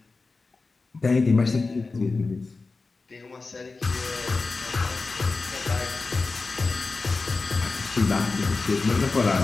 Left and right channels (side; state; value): right; quieter; 3.9 dB